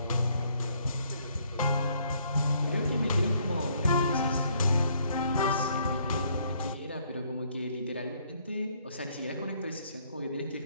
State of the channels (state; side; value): inverted; both; correlation -0.67